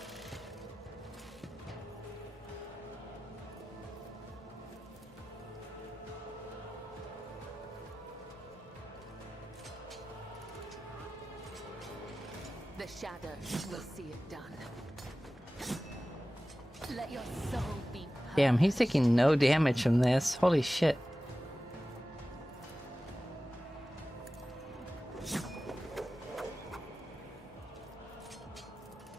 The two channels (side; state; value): both; normal; correlation 0.95